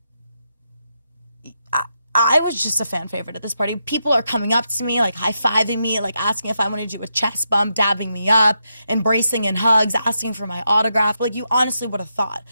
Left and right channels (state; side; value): inverted; both; correlation -0.83